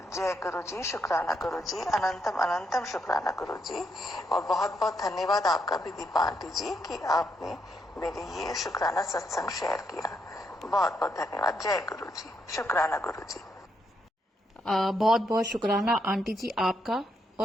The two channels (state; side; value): normal; both; correlation 0.78